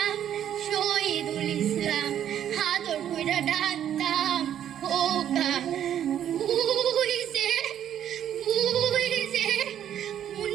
শহীদুল ইসলাম, আদর কইরা ডাকতাম খোকা। ওই যে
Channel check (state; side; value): quieter; left; 10.2 dB